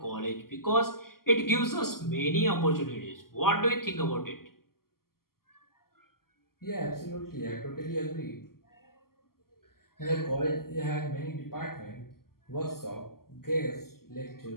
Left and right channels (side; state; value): right; late; 0.92 ms